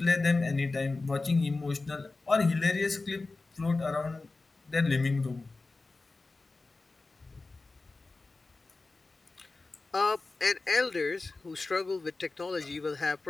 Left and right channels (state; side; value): quieter; right; 3.5 dB